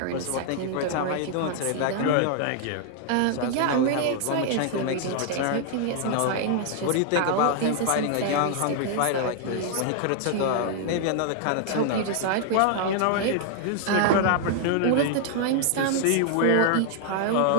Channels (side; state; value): both; different; correlation 0.00